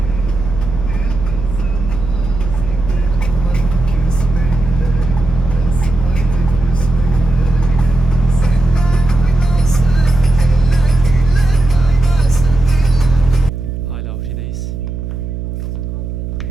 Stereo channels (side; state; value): right; noise; hum, 7 dB below the sound